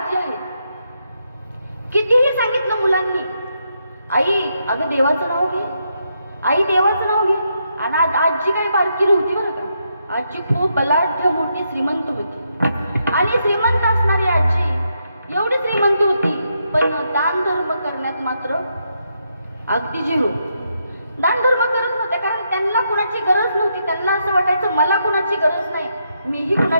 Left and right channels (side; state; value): both; inverted; correlation -0.80